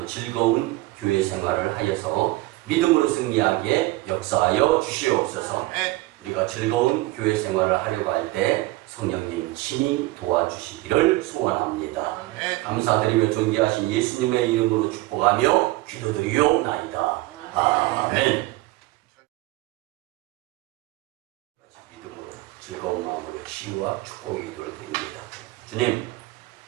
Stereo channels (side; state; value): left; quieter; 19.3 dB